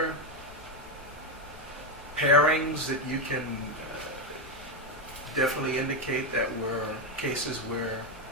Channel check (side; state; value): both; normal; correlation 0.06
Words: pairings that you can definitely indicate that were cases where